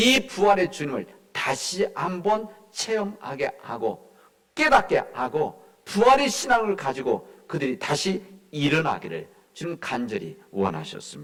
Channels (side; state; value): both; identical; correlation 1.00